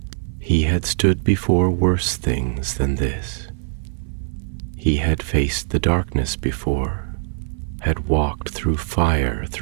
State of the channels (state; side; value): silent; left; 59 dB below the other